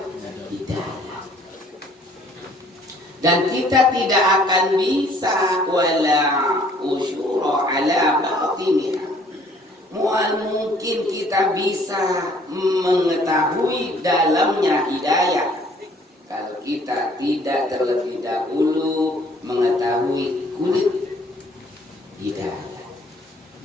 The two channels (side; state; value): both; normal; correlation 0.59